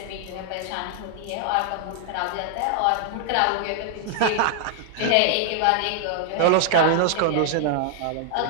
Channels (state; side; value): different; both; correlation 0.00